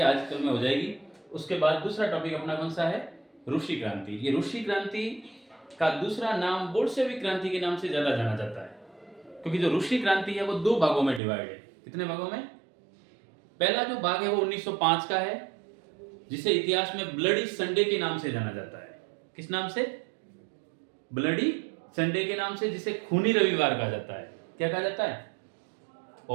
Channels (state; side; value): drops out; left; at 11.2 s